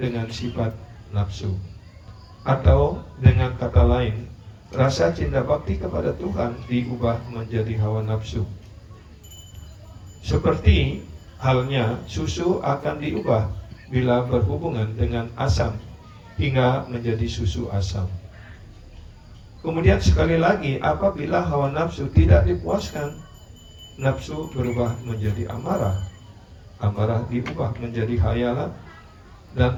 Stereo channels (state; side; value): identical; both; correlation 1.00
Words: dengan sifat nafsu. Atau dengan kata lain, rasa cinta bakti kepada Tuhan diubah menjadi hawa nafsu. Seperti halnya susu akan diubah bila berhubungan dengan asam hingga menjadi susu asam. Kemudian sekali lagi, apabila hawa nafsu tidak dipuaskan, nafsu berubah menjadi amarah. Amarah diubah menjadi hayalan, dan